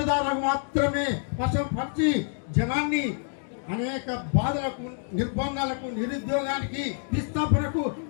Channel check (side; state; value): right; silent; 57 dB below the other